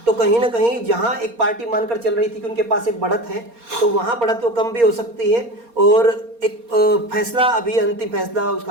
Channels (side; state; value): left; late; 4.3 ms